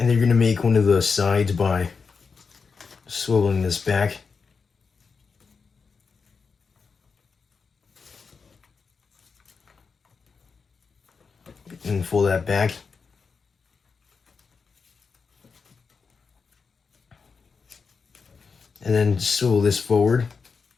you're gonna make one of the sides by swiveling this back. And fold that back. And then swivel this forward.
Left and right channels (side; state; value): right; quieter; 5.2 dB